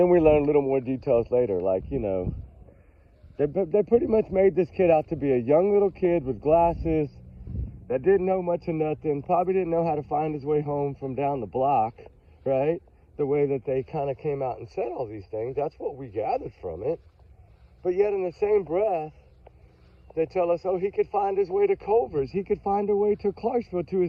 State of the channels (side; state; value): both; identical; correlation 1.00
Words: we learned a little more details later, like, you know, they pretty much made this kid out to be a young little kid with glasses that didn't know much of nothing, probably didn't know how to find his way home from down the block, right? The way that they kind of came out and said all these things, that's what we gathered from it. But yet in the same breath, they tell us, oh, he could find his way to Culver's. He could find a way to Clarksville, to